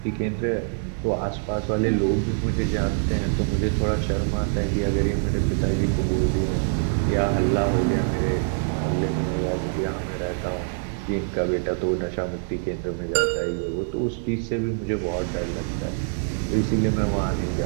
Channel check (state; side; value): silent; left; digital silence